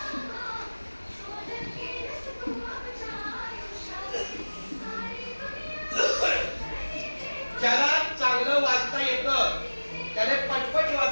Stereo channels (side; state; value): both; inverted; correlation -1.00